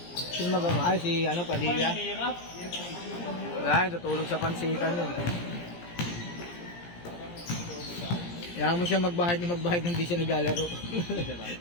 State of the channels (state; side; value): late; right; 17 ms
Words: Sino magawa? Ay, si ano, Padilla. Mahirap. Wala, tutulog sa pansitan yun. Kaya mo siya magbahid hindi siya naglalaro.